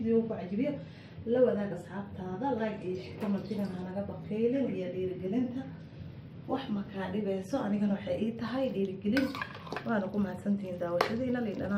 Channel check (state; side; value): identical; both; correlation 1.00